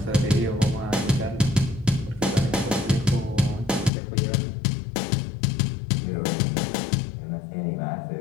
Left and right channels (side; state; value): right; drops out; at 3.9 s